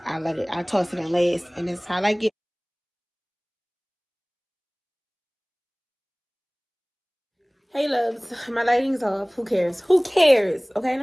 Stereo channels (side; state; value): both; identical; correlation 1.00